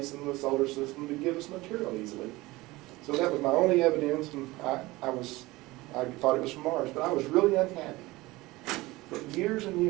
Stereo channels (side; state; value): left; quieter; 20.3 dB